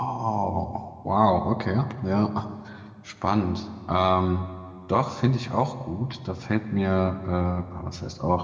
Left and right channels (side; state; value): both; identical; correlation 1.00